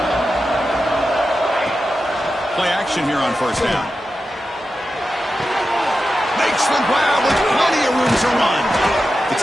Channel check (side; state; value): both; normal; correlation 0.91